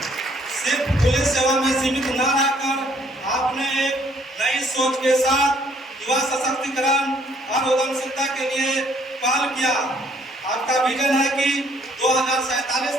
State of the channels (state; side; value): normal; both; correlation 0.64